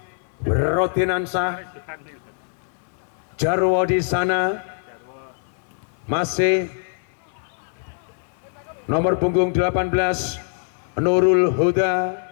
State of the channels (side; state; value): right; silent; 63 dB below the other